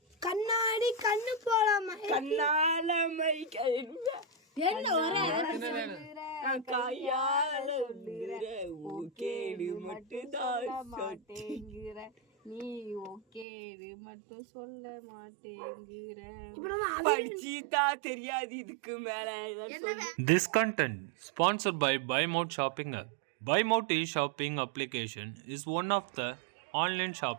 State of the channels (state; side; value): drops out; left; at 13.5 s